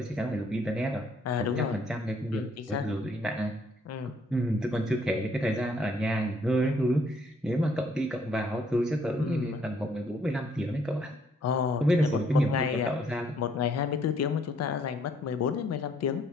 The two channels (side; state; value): both; normal; correlation 0.66